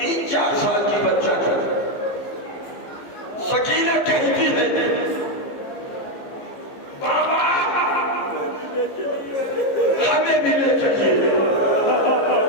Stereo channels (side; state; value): right; late; 15 ms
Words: साल की बच्चा था। सकीना कहती है, बाबा हमें भी ले चलिए।